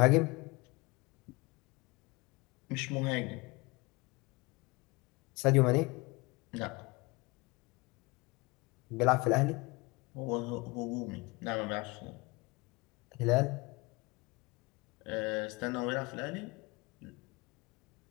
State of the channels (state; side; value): quieter; right; 25.0 dB